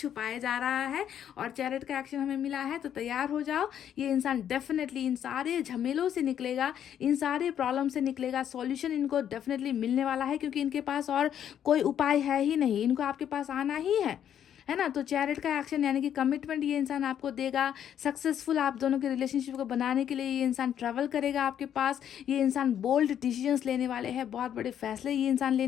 जा रहा है। और चैरिट का एक्शन हमें मिला है, तो तैयार हो जाओ, ये इंसान डेफिनेटली इन सारे झमेलों से निकलेगा, इन सारे प्रॉब्लम से निकलेगा। सॉल्यूशन इनको डेफिनेटली मिलने वाला है, क्योंकि इनके पास और कोई उपाय है ही नहीं, इनको आपके पास आना ही है है ना। तो चैरिट का एक्शन यानी कि कमिटमेंट ये इंसान आपको देगा, सक्सेसफुल आप दोनों के रिलेशनशिप को बनाने के लिए ये इंसान ट्रैवल करेगा आपके पास। ये इंसान बोल्ड डिसीजंस लेने वाले हैं, बहुत बड़े फैसले ये इंसान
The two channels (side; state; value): right; quieter; 9.6 dB